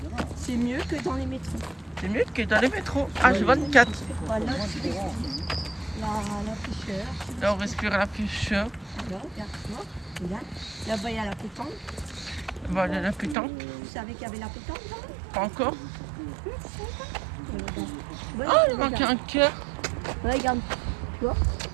C'est mieux que dans les métros. C'est mieux que dans les métros. H24. Voilà, tu respires. La fraîcheur. Là, on respire la fraîcheur. Là, regarde-moi. Regarde. Là-bas, il y a la pétanque. Voilà la pétanque. Vous savez qu'il y avait la pétanque là? Pas encore. Ouais, Ah, il manque un cœur. Ouais, regarde. Tu vois?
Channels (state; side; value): drops out; left; at 13.4 s